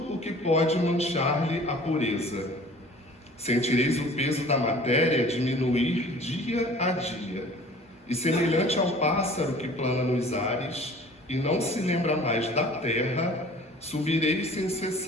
o que pode manchar-lhe a pureza. Sentireis o peso da matéria diminuir dia a dia. E semelhante ao pássaro que plana nos ares e não se lembra mais da terra, subireis sem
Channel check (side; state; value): both; normal; correlation 0.47